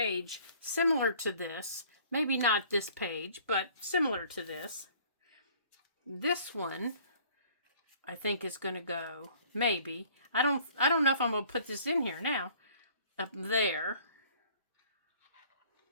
similar to this. Maybe not this page, but similar to this. This one, I think, is going to go, maybe. I don't know if I'm going to put this in here now. Up there.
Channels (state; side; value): inverted; both; correlation -0.54